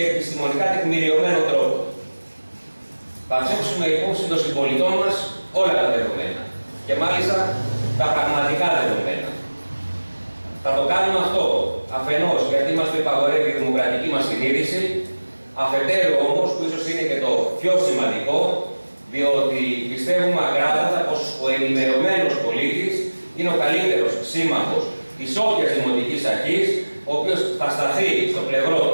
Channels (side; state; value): both; inverted; correlation -1.00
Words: επιστημονικά τεκμηριωμένο τρόπο. Θα θέσουμε υπόψη των συμπολιτών μας όλα τα δεδομένα, και μάλιστα τα πραγματικά δεδομένα. Θα το κάνουμε αυτό αφενός γιατί μας το υπαγορεύει η δημοκρατική μας συνείδηση, αφετέρου όμως, που ίσως είναι και το πιο σημαντικό, διότι πιστεύουμε ακράδαντα πως ο ενημερωμένος πολίτης είναι ο καλύτερος σύμμαχος της όποιας δημοτικής αρχής, ο οποίος θα σταθεί στο πλευρό